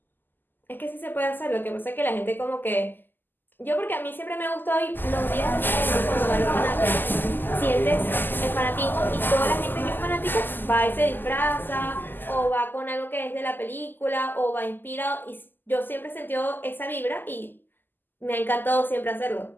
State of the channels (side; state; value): right; late; 0.091 ms